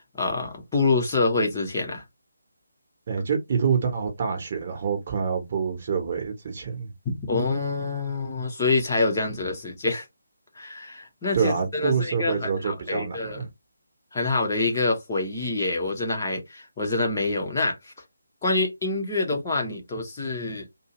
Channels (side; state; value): both; inverted; correlation -0.64